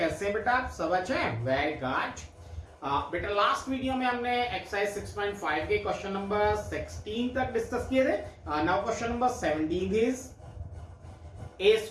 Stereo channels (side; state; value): both; identical; correlation 1.00